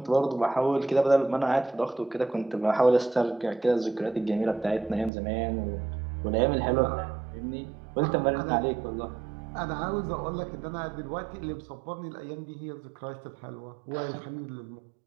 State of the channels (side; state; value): left; drops out; at 5.1 s